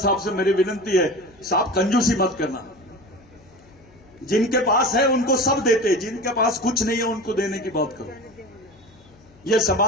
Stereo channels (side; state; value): left; noise; hum, 27 dB below the sound